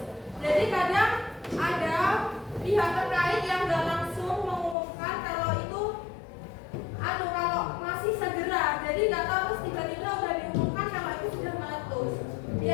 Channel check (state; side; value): drops out; right; at 4.8 s